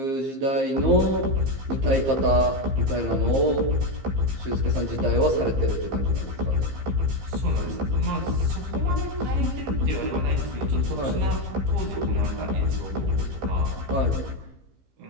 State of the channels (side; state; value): left; late; 15 ms